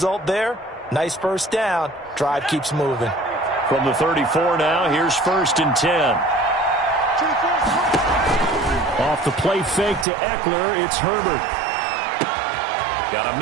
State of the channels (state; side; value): drops out; left; at 10.1 s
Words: there, nice first down. Drive keeps moving. From the 34 now, here's first and 10. Off the play fake to Eckler, it's Herbert. Got a